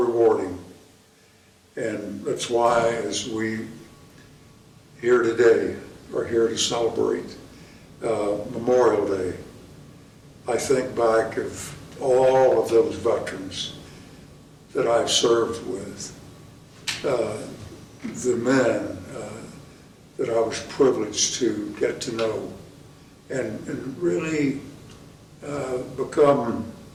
and that's why, as we here today are here to celebrate Memorial Day, I think back of all of those veterans that I've served with, the men that I was privileged to get to know and really become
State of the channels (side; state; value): both; identical; correlation 1.00